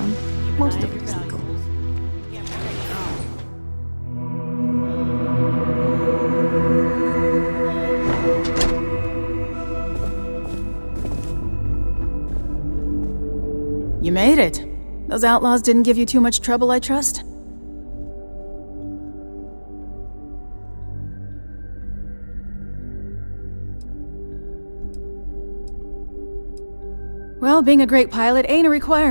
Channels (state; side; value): inverted; both; correlation -1.00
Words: most of it is legal. You made it. Those outlaws didn't give you too much trouble, I trust? Well, being a great pilot ain't a